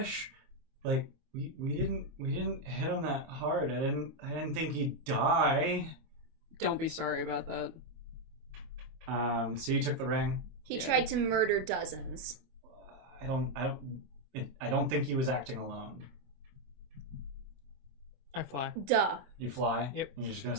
Like we didn't hit him that hard. I didn't think he'd die. Don't be sorry about that. So you took the ring. He Yeah. tried to murder dozens. I don't think he was acting alone. I fly. Duh. You fly. Yep. You're just gonna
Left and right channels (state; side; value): late; left; 25 ms